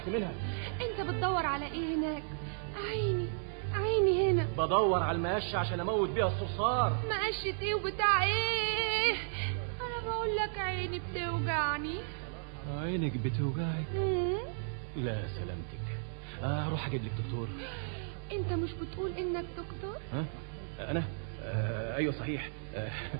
منها. انت بتدور على ايه هناك؟ عيني عيني هنا. بدور على المقشه عشان اموت بيها الصرصار. مقشة ايه وبتاع ايه؟ انا بقول لك عيني بتوجعني. عينك بتوجعك؟ لا سلامتك. اروح اجيب لك دكتور. انت مش بتقول انك دكتور؟ ها؟ انا؟ ايوه صحيح.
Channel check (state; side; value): silent; left; digital silence